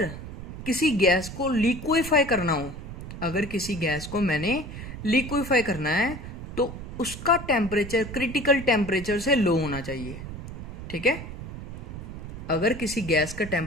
किसी गैस को लिक्विफाई करना हो, अगर किसी गैस को मैंने लिक्विफाई करना है तो उसका टेम्परेचर क्रिटिकल टेम्परेचर से लो होना चाहिए, ठीक है। अगर किसी गैस का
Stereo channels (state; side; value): noise; right; rumble, 10 dB below the sound